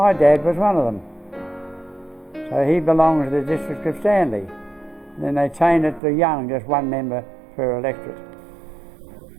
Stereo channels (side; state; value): left; drops out; at 6.0 s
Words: dad was one of them. So he belonged to the district of Stanley. Then they changed it to Young, just 1 member per electorate.